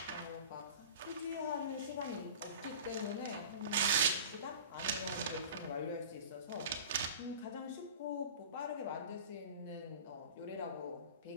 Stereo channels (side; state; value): both; inverted; correlation -0.37